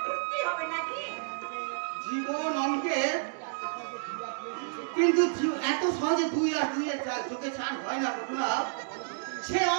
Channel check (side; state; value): left; silent; digital silence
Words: করতেই হবে নাকি? জীবন অঙ্কের, কিন্তু এত সহজে 2 আর 2 এর যোগে 4 হয় না বন্ধুরা। সে